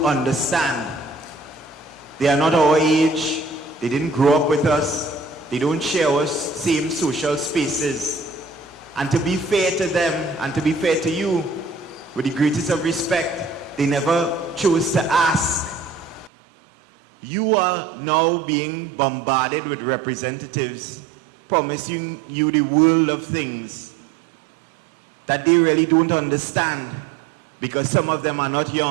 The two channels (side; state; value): left; drops out; at 16.3 s